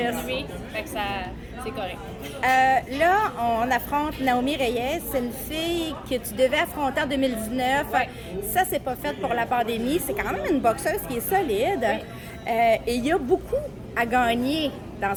Fait que ça, c'est correct. Là, on affronte Naomi Reyes. C'est une fille que tu devais affronter en 2019. Ouais. Ça, c'est pas fait pour la pandémie. C'est quand même une boxeuse qui est solide. Et il y a beaucoup à gagner dans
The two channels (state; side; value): identical; both; correlation 1.00